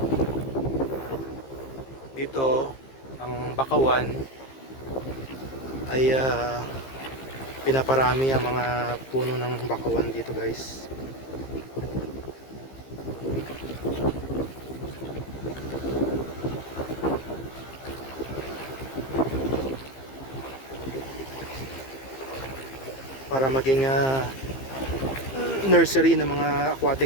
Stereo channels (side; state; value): right; late; 15 ms